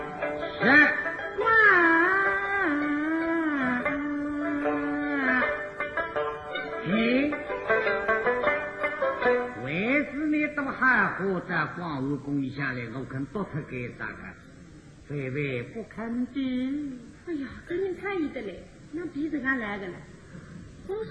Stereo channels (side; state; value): both; identical; correlation 1.00